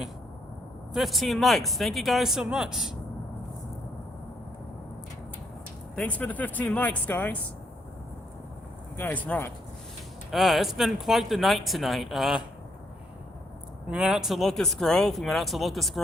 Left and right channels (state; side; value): normal; both; correlation 0.73